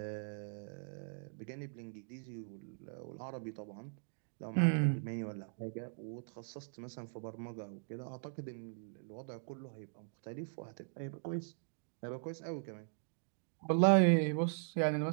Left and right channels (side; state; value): left; silent; digital silence